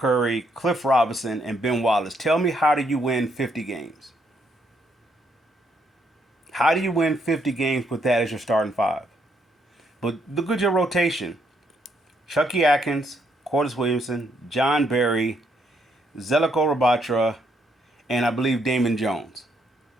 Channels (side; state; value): both; normal; correlation 0.73